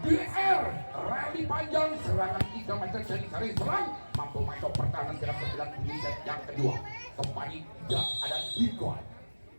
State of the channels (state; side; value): inverted; both; correlation -1.00